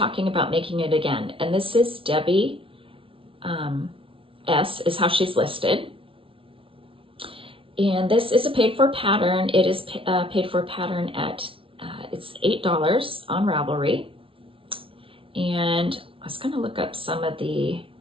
about making it again, and this is Debbie S is how she's listed. And this is a paid for pattern. It is paid for pattern at, it's $8 on Ravelry. And I was going to look up some of the,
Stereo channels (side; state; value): left; late; 0.26 ms